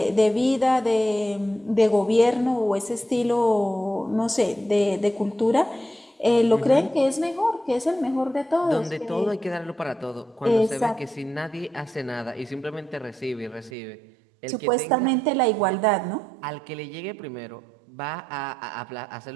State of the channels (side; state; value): left; drops out; at 13.7 s